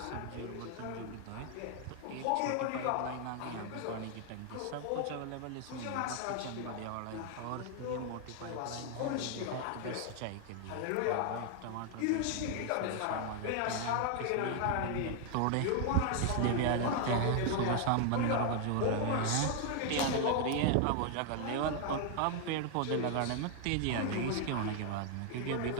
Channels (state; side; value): different; both; correlation 0.00